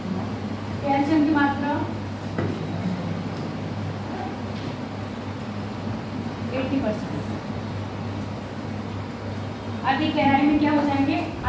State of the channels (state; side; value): identical; both; correlation 1.00